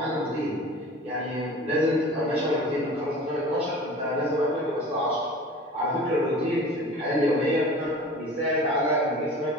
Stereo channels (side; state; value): both; normal; correlation 0.40